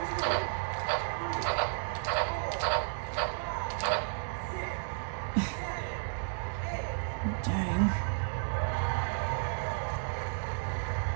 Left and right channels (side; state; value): left; silent; digital silence